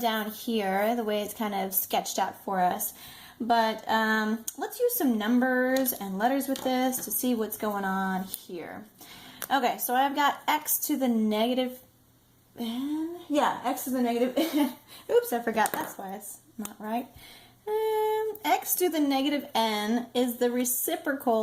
here, the way it's kind of sketched out for us. But let's use some numbers and letters with this to see what's going on here. Okay, so I've got x to the negative n. Yeah, x to the negative n. Oops, I forgot. That's why it's not right. X to the negative n is the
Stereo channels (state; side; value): identical; both; correlation 1.00